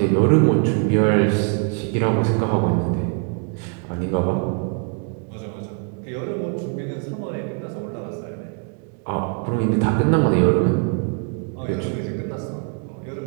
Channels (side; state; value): left; quieter; 37.7 dB